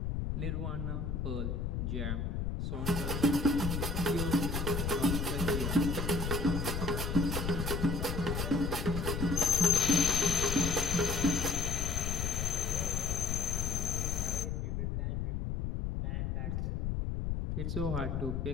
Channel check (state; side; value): noise; left; rumble, 1 dB below the sound